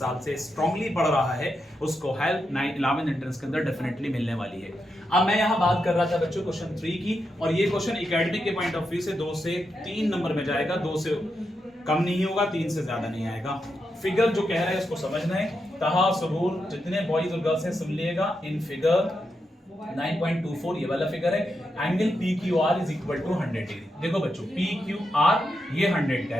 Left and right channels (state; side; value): normal; both; correlation 0.85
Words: से स्ट्रांगली पढ़ रहा है उसको हेल्प 11th एंट्रेंस के अंदर डेफिनेटली मिलने वाली है। अब मैं यहाँ बात कर रहा था बच्चों क्वेश्चन 3 की, और ये क्वेश्चन एकेडमिक के पॉइंट ऑफ व्यू से 2 से 3 नंबर में जाएगा, 2 से कम नहीं होगा, 3 से ज्यादा नहीं आएगा। फिगर जो कह रहा है उसको समझना है। तहा सबूर जितने बॉयज और गर्ल्स हैं सुन लिएगा। इन फिगर 9.24 ये वाला फिगर है। Angle PQR is equal to 100 degree. देखो बच्चों PQR ये 100 का